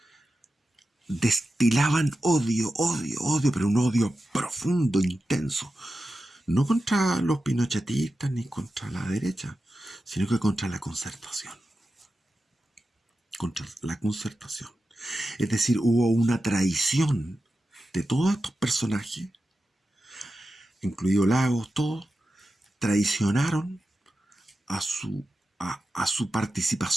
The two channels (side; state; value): both; normal; correlation 0.92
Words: destilaban odio, pero un odio profundo, intenso. No contra los pinochetistas ni contra la derecha, sino que contra la concertación. Contra la concertación. Es decir, hubo una traición de todos estos personajes, incluido Lagos, todos, traicionaron a su